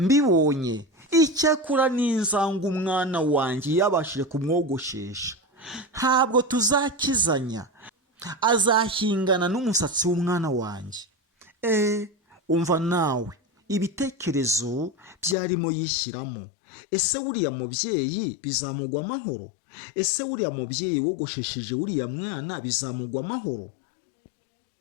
Icyakora n'inzanga umwana wanjye yabashije kumwogoshesha. Ntabwo tuzakizanya, azahingana n'umusatsi w'umwana wanjye. Umva nawe, ibitekerezo byarimo yishyiramo. Ese uriya mubyeyi bizamugwa amahoro? Ese uriya mubyeyi wogoshesheje uriya mwana bizamugwa amahoro?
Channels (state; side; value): drops out; right; at 15.4 s